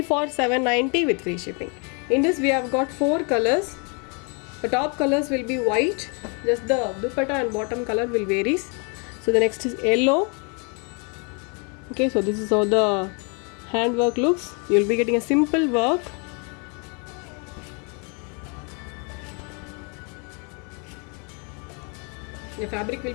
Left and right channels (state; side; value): quieter; right; 35.5 dB